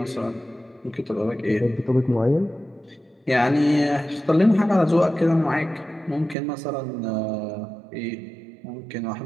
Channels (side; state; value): left; drops out; at 6.4 s